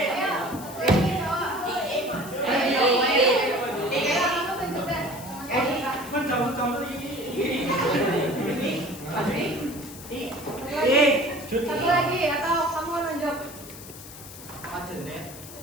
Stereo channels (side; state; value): left; noise; hiss, 15 dB below the sound